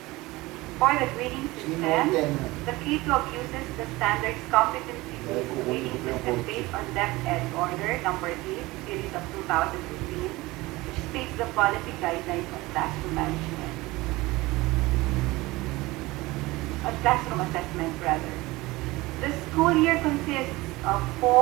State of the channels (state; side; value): quieter; left; 20.6 dB